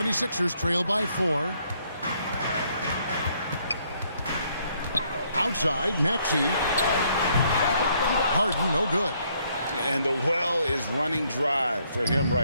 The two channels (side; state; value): both; inverted; correlation -0.69